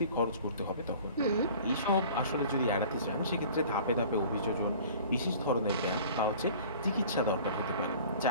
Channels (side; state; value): both; inverted; correlation -0.46